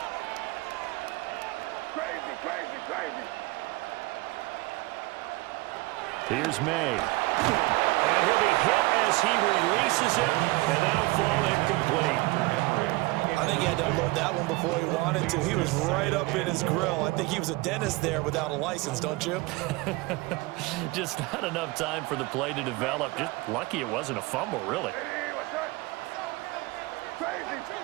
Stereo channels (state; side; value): quieter; left; 22.4 dB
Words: Here's May. And he'll be hit as he releases it, and that'll fall incomplete. I think he had to unload that one before he wanted to. He was right up in his grill. I think he was a dentist there without a license, don't you? Just not enough time for the play to develop. Just lucky it wasn't a fumble, really.